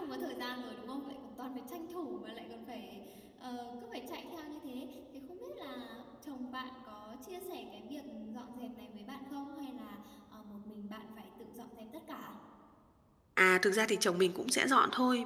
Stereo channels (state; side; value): identical; both; correlation 1.00